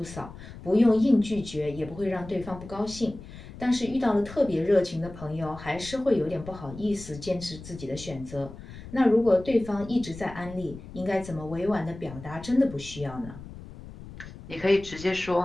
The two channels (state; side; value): noise; left; rumble, 15 dB below the sound